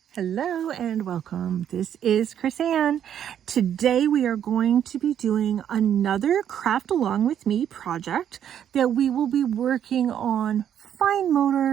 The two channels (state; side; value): quieter; left; 9.6 dB